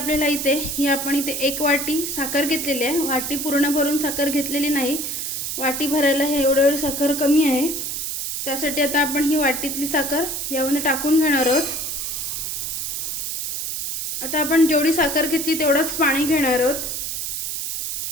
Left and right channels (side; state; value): right; noise; hiss, 3 dB below the sound